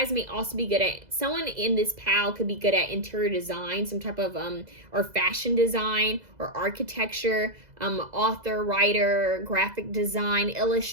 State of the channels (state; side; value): late; left; 2.0 ms